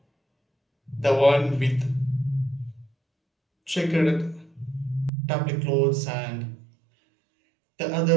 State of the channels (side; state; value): left; drops out; at 5.1 s